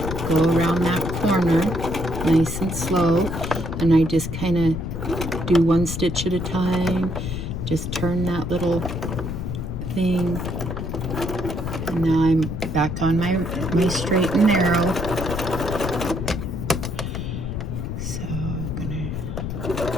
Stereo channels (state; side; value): noise; left; rumble, 4 dB below the sound